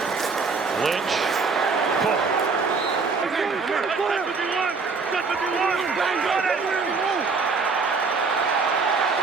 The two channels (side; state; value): left; quieter; 4.6 dB